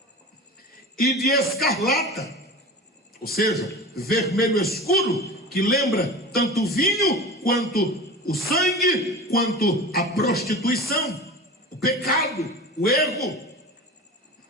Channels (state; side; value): normal; both; correlation 0.33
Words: e de escarlata, ou seja, vermelho escuro, que lembra tanto o vinho, quanto o sangue, quanto a prostituição, o pecado, o erro,